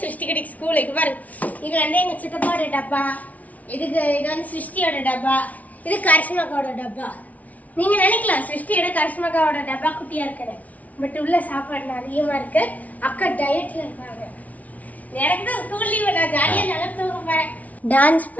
சிருஷ்டிக்குட்டி ஸ்கூலுக்கு பாருங்க. இது வந்து எங்க சித்தப்பாவோட டப்பா, இது வந்து சிருஷ்டியோட டப்பா, இது கரிஷ்மாக்காவோட டப்பா. நீங்க நினைக்கலாம் சிருஷ்டியோட கரிஷ்மாக்காவோட டப்பா குட்டியா இருக்குது, பட் உள்ள சாப்பாடு அதிகமா இருக்கு. அக்கா டயட்ல இருக்காங்க. எனக்கு தான் ஸ்கூல் லீவு, நான் ஜாலியா நல்லா தூங்க போறேன். டான்ஸ்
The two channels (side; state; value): right; late; 0.071 ms